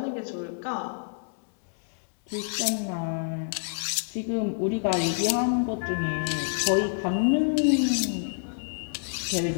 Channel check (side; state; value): right; silent; digital silence